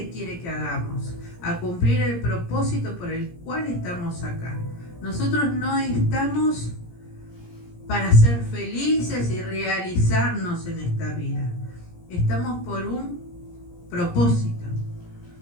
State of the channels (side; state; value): right; late; 17 ms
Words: quiere que hagamos, a cumplir el propósito por el cual estamos acá. Nosotros no estamos para ser felices y realizarnos en esta vida. Estamos por un propósito.